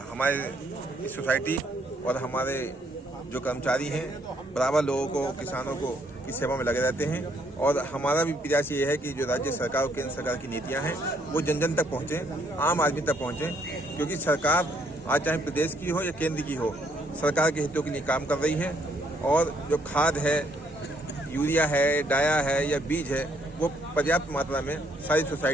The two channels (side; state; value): both; normal; correlation 0.69